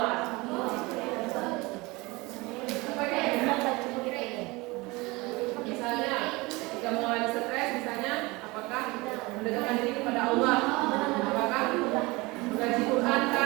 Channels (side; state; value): left; quieter; 23.5 dB